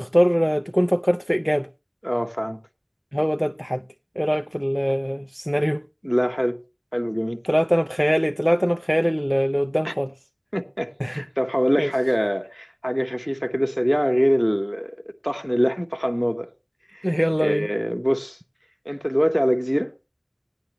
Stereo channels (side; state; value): both; identical; correlation 1.00